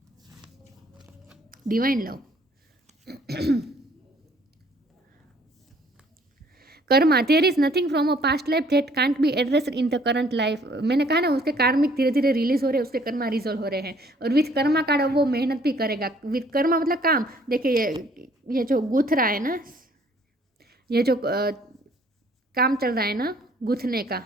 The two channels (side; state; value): both; normal; correlation 0.60